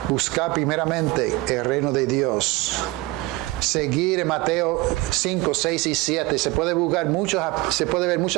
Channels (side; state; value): left; quieter; 21.1 dB